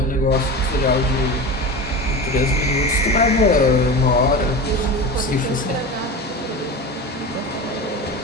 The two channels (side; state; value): both; normal; correlation 0.27